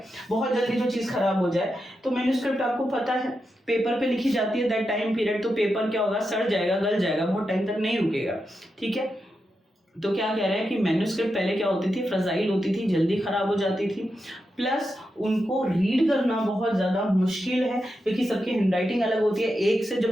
बहुत जल्दी जो चीज़ खराब हो जाए, तो मैन्युस्क्रिप्ट आपको पता है पेपर पे लिखी जाती है, दैट टाइम पीरियड, तो पेपर क्या होगा, सड़ जाएगा, गल जाएगा, बहुत टाइम तक नहीं रुकेगा, ठीक है। तो क्या कह रहे हैं कि मैन्युस्क्रिप्ट पहले क्या होती थी, फ्रेजाइल होती थी, जल्दी खराब हो जाती थी, प्लस उनको रीड करना बहुत ज़्यादा मुश्किल है क्योंकि सबकी हैंडराइटिंग अलग होती है। एक से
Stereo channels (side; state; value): both; normal; correlation 0.87